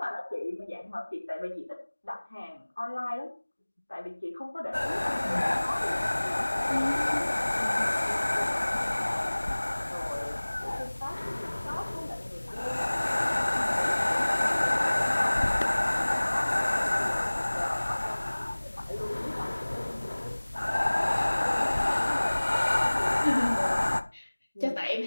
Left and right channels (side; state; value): both; inverted; correlation -1.00